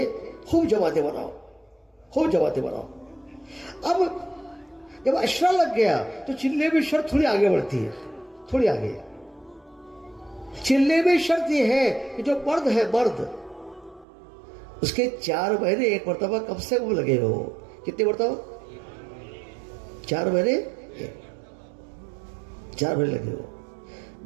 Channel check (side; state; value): left; drops out; at 14.1 s